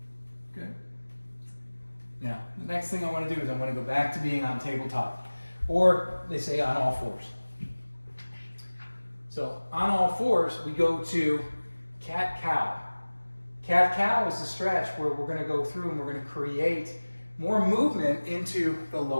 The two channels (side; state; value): both; inverted; correlation -1.00